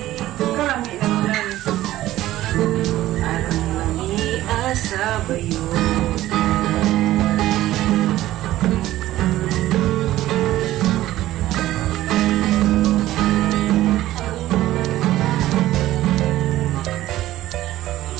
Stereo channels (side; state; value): left; quieter; 15.0 dB